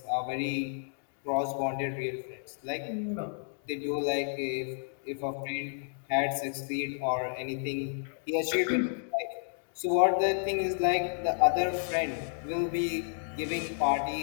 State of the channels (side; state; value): right; silent; digital silence